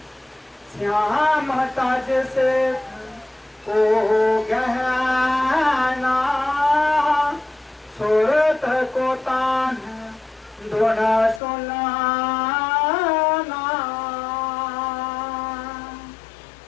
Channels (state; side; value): drops out; right; at 11.4 s